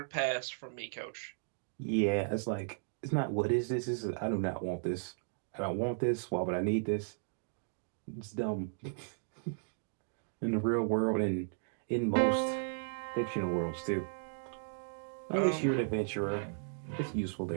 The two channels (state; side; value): silent; left; digital silence